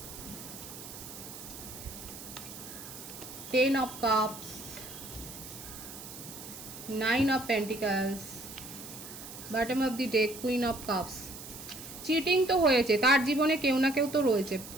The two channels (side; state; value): right; noise; hiss, 13 dB below the sound